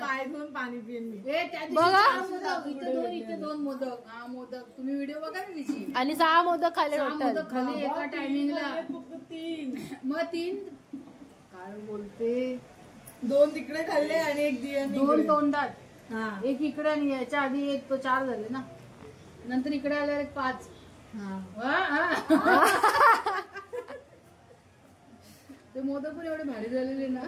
पाय धुवून पाणी पिऊन बघा. इथे दोन मोदक. हा मोदक तुम्ही व्हिडिओ बघा ना तिची. आणि 6 मोदक खाल्ले मोदक खाली एका टायमिंगला. मग 3 काय बोलते, 2 तिकडे खाल्ले आणि 1 दिया 2 तोंडात. एक इकडे आणि याच्या आधी 1 तो 4 झाले ना, नंतर इकडे आल्यावर 1 5. ते मोदक पण एवढे भारी झालेले ना,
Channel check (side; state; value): both; identical; correlation 1.00